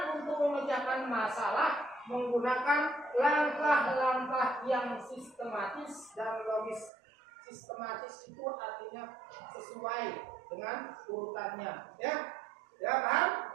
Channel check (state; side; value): drops out; left; at 6.9 s